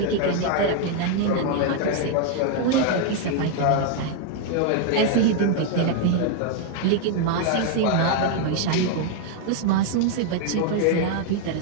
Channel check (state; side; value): different; both; correlation 0.00